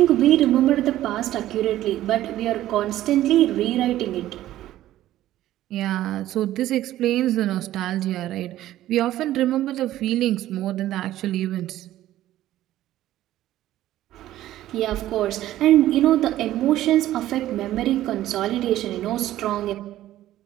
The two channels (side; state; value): left; quieter; 13.9 dB